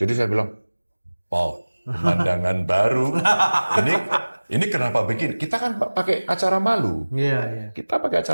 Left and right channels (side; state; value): both; inverted; correlation -1.00